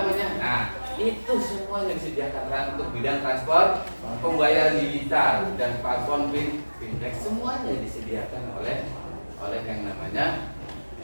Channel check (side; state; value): both; inverted; correlation -1.00